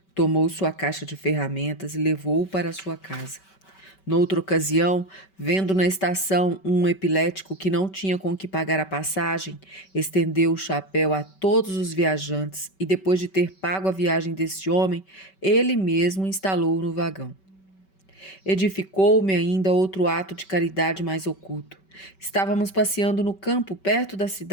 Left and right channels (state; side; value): late; right; 5.2 ms